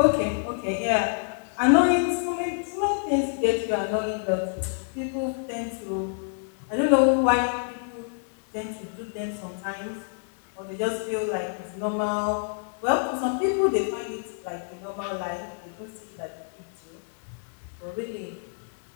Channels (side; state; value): right; silent; digital silence